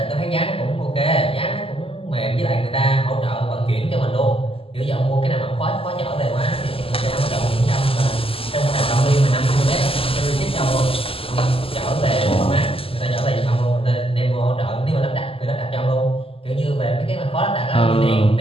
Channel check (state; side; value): late; right; 0.27 ms